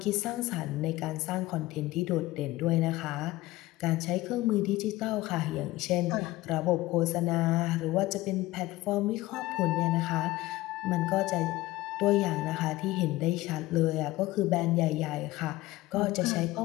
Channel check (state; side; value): quieter; right; 18.0 dB